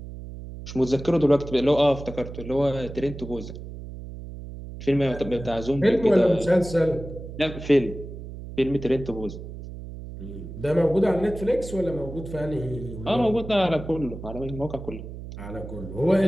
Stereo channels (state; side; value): noise; right; hum, 11 dB below the sound